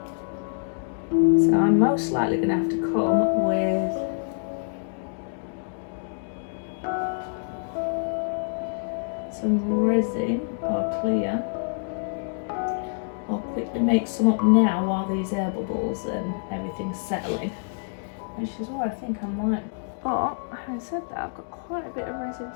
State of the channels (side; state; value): right; silent; digital silence